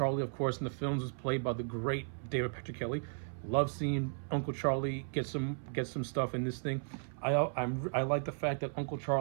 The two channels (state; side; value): silent; left; 54 dB below the other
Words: of course, in the films was played by the great David Petrocelli. Love seeing Uncle Charlie get some stuff in this thing. I like the fact that Uncle